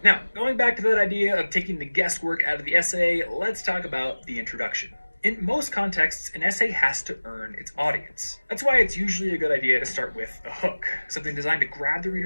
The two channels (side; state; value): both; inverted; correlation -1.00